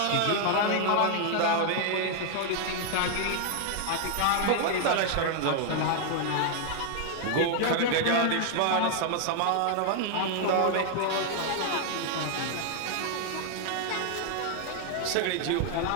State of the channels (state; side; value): different; both; correlation 0.00